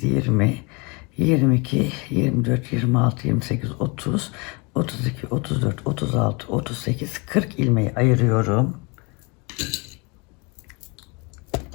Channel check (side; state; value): right; quieter; 29.5 dB